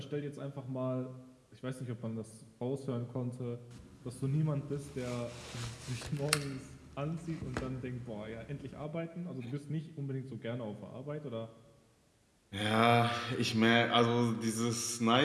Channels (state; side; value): identical; both; correlation 1.00